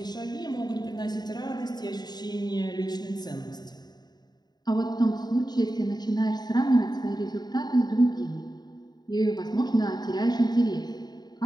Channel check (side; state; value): right; late; 0.20 ms